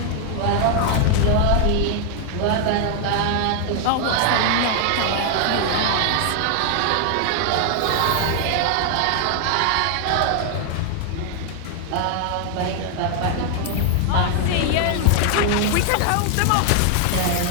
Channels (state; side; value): different; both; correlation 0.00